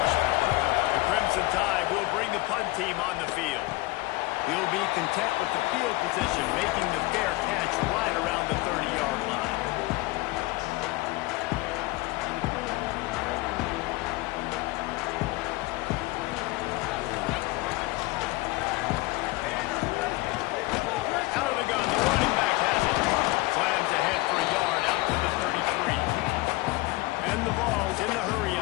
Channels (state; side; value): quieter; right; 21.4 dB